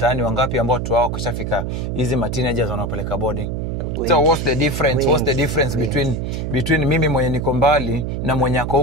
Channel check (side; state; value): right; noise; hum, 3 dB below the sound